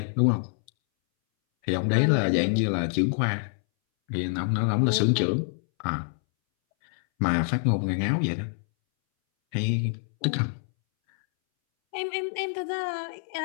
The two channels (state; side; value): silent; right; 61 dB below the other